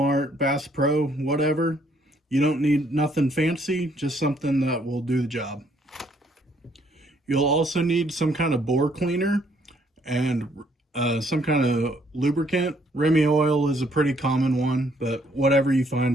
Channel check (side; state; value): both; normal; correlation 0.67